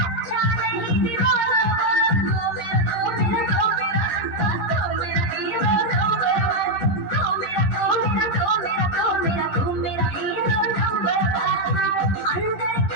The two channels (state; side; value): late; right; 10 ms